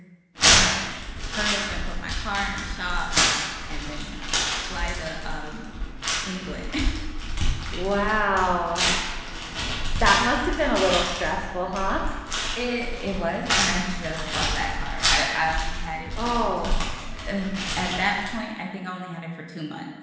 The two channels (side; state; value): both; identical; correlation 1.00